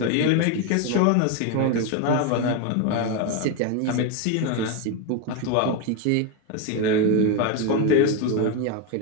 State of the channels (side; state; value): both; different; correlation 0.02